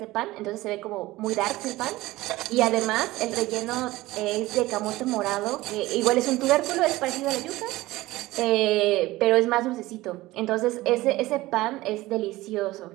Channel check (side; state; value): left; quieter; 18.4 dB